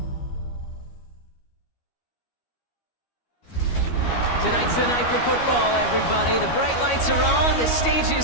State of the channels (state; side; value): late; right; 13 ms